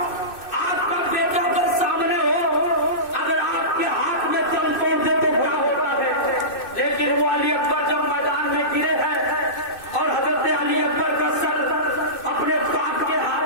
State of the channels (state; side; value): late; right; 2.6 ms